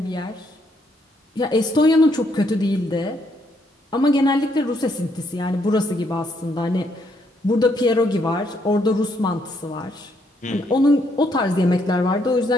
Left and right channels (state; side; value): normal; both; correlation 0.73